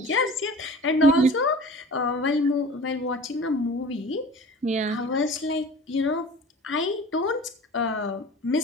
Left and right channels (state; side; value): normal; both; correlation 0.40